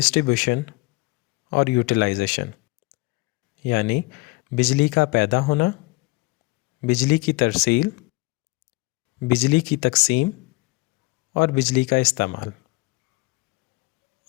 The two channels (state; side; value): quieter; right; 23.7 dB